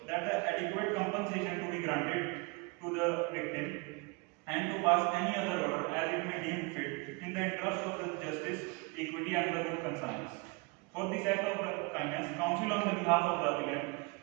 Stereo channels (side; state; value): left; quieter; 28.2 dB